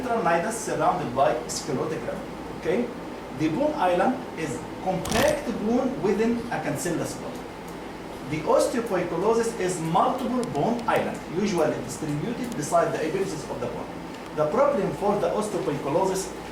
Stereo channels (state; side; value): identical; both; correlation 1.00